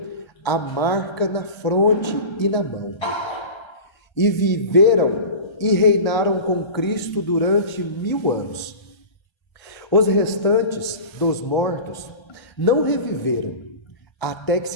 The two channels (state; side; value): late; right; 1.3 ms